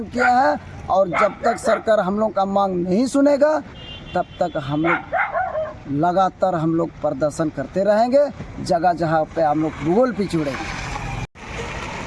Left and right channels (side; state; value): both; identical; correlation 1.00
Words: किया है। और जब तक सरकार हम लोग का मांग नहीं सुनेगा तब तक हम लोग लगातार हम लोग प्रदर्शन करते रहेंगे। जगह जगह पे हम लोग भूगोल पिछड़ेंगे।